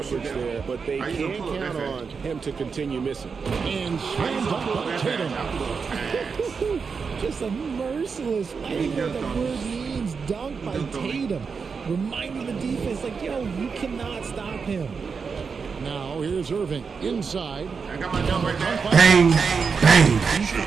there, but they can count on him to continue missing. And slammed up by Tatum. Just a merciless, I don't know what the word means, dunk by Tatum. Reminding the defense, like, yo, you cannot stop him. Now here's Irving inside. I got my jump right there. Bang, bang.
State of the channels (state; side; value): quieter; left; 5.5 dB